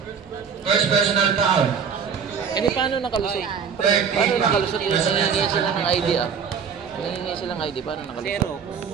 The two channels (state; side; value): quieter; left; 6.7 dB